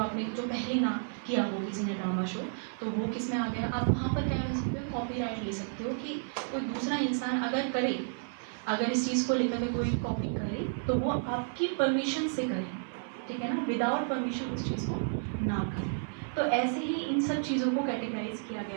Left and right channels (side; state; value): left; silent; 56 dB below the other